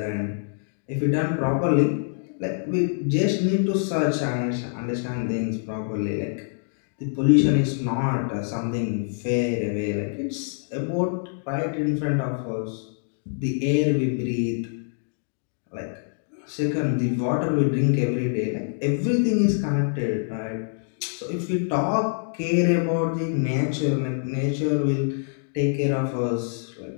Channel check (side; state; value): right; silent; digital silence